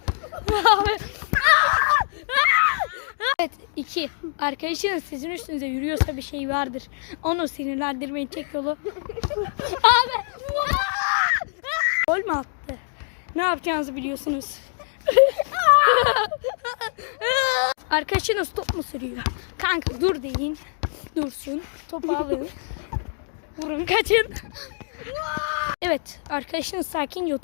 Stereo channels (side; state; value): right; silent; digital silence